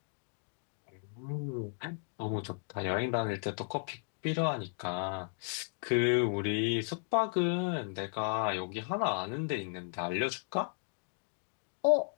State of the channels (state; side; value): silent; right; digital silence